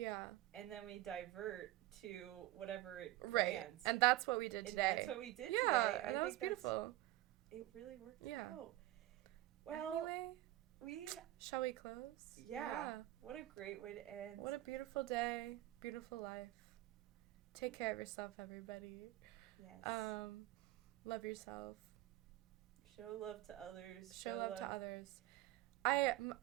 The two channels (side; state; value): left; quieter; 16.7 dB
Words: And then we divert to whatever it lands. Right. And that's what we did today. That's what we did today. Yeah, and that was beautiful. It really worked out. Well, anyway, shall we close? Yeah. What a great way to end. What a beautiful day. Beautiful life. Take care of yourself, everybody. Yes. Love yourself. Show love to others. Show love to others. I